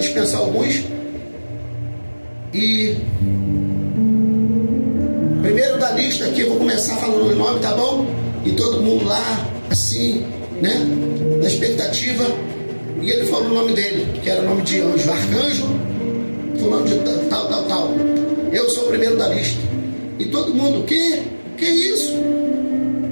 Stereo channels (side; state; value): both; inverted; correlation -1.00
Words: alguns. E primeiro da lista aqui, eu vou começar falando o nome, tá bom? E todo mundo lá, assim, né, na expectativa. E ele falou o nome dele, que era o nome de anjo, arcanjo, fulano de tal. Eu sou o primeiro da lista. E todo mundo, que isso?